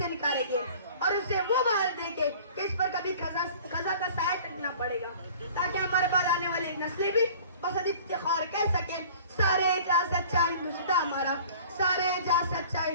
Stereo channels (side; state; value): both; inverted; correlation -0.46